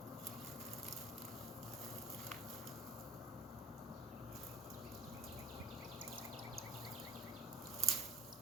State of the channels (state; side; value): normal; both; correlation 0.42